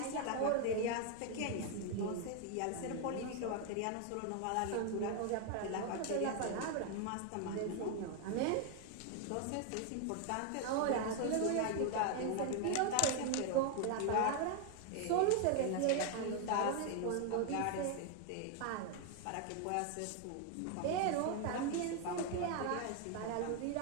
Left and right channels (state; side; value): different; both; correlation 0.00